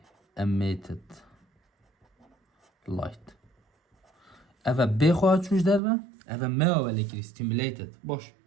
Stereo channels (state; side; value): drops out; left; at 5.8 s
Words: emitted light اوه بخواهد چوش در و اوه ما ولی کری stimulated باش